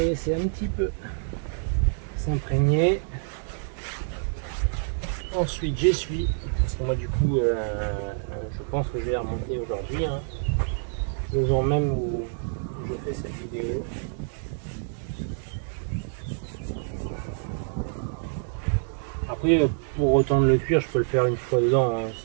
laisser un petit peu s'imprégner. Ensuite, j'essuie. Parce que moi, du coup, je pense que je vais la remonter aujourd'hui. Hein, le jour même où je fais cette vidéo. Après, pour retendre le cuir, je peux le faire une fois dedans, hein,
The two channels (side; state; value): left; silent; digital silence